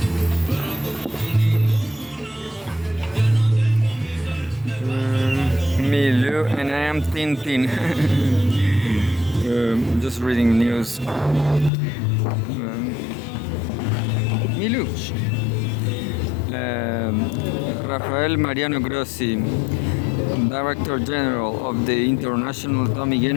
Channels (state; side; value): drops out; right; at 11.7 s